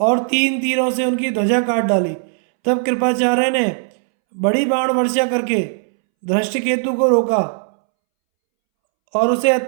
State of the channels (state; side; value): silent; left; 67 dB below the other